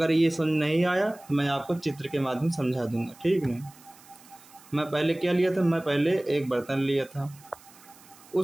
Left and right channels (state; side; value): noise; right; hiss, 24 dB below the sound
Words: ये समझ नहीं आया तो मैं आपको चित्र के माध्यम से समझा दूंगा, ठीक ना। मैं पहले क्या लिया था, मैं पहले एक बर्तन लिया था,